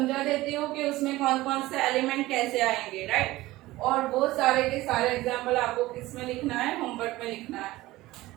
देती हूँ कि उसमें कौन कौन से एलिमेंट कैसे आएंगे, राइट। और वो सारे के सारे एग्जाम्पल आपको किस में लिखना है, होमवर्क में लिखना है।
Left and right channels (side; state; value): left; quieter; 18.0 dB